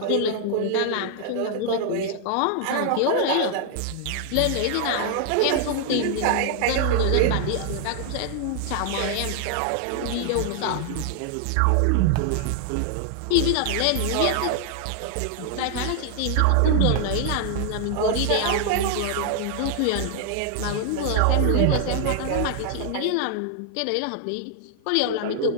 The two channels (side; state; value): both; different; correlation 0.00